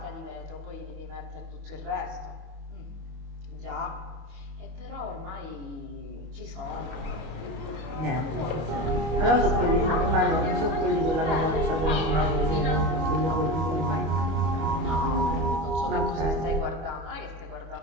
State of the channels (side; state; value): left; late; 25 ms